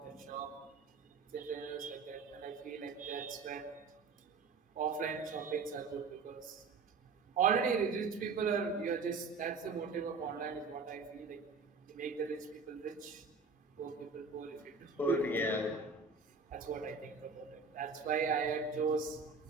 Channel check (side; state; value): left; quieter; 4.6 dB